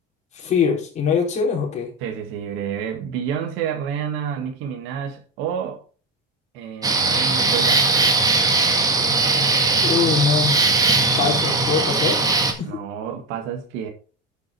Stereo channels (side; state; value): both; normal; correlation 0.13